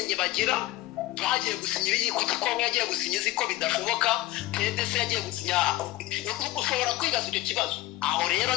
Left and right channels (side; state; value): right; quieter; 16.8 dB